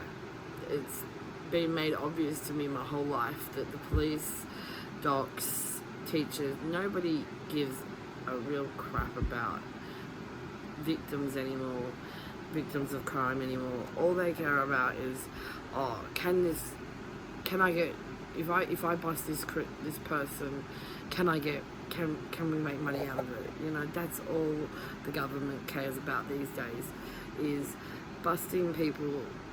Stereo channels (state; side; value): identical; both; correlation 1.00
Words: It's been made obvious to me my whole life that the police, docs, teachers, nobody gives a real crap about victims anymore, victims of crime anymore. All they care about is, can I get, if I bust this person, can we make money out of it? That's all the government cares about these days, is busting people,